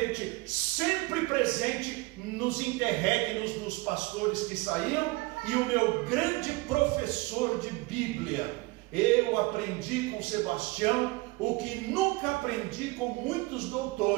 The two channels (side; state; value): left; quieter; 22.9 dB